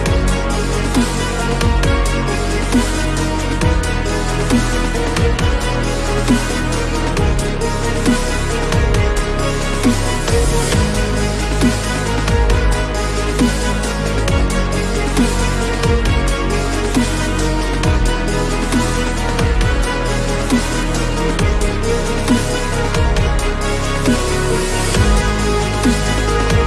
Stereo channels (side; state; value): both; identical; correlation 1.00